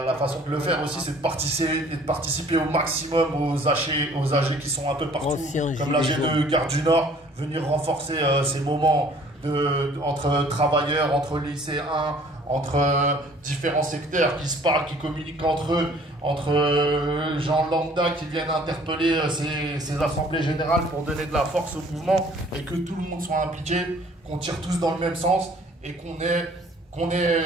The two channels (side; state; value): both; normal; correlation 0.55